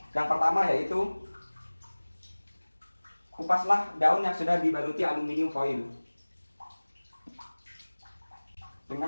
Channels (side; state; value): both; inverted; correlation -1.00